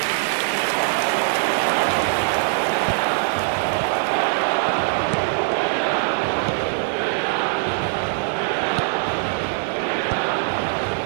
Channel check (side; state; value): left; silent; 62 dB below the other